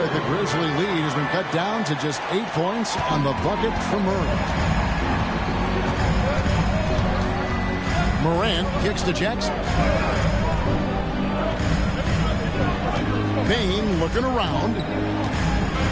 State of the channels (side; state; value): both; identical; correlation 1.00